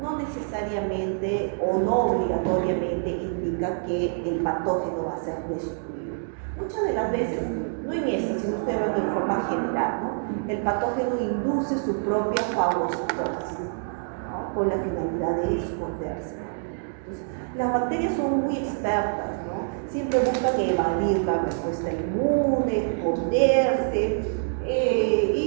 no necesariamente o no obligatoriamente indica que el patógeno va a ser destruido. Muchas de las veces no en esta, sino estoy hablando de forma general, ¿no? El patógeno induce su propia fagocitosis, ¿no? Con la finalidad de esconderse. Entonces, las bacterias son muy expertas, ¿no? Siempre buscan evadir la respuesta inmune, esconderse,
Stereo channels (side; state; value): left; silent; digital silence